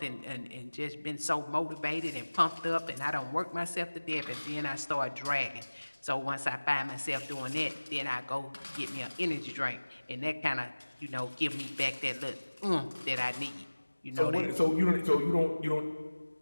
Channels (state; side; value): inverted; both; correlation -1.00